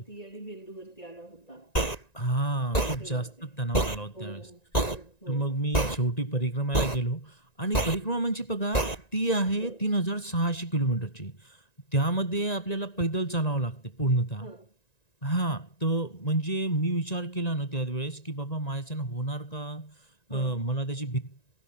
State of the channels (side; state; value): right; late; 1.9 ms